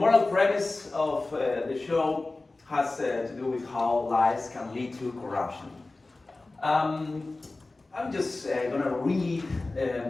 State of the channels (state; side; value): quieter; right; 3.2 dB